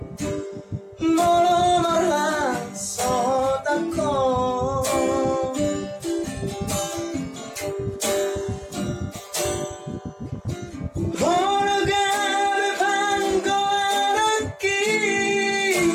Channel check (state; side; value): identical; both; correlation 1.00